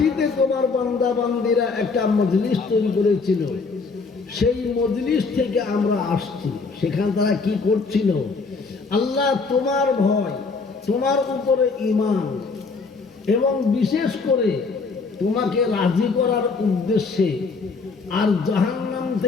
তোমার বান্দা বান্দিরা একটা মজলিস তৈরি করেছিল, সেই মজলিস থেকে আমরা আসছি। সেখানে তারা কি করছিল? আল্লাহ, তোমার ভয়, তোমার উপরে ঈমান এবং বিশেষ করে তোমাকে রাজি করার উদ্দেশ্যে, আর জাহান্নাম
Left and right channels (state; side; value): quieter; right; 4.4 dB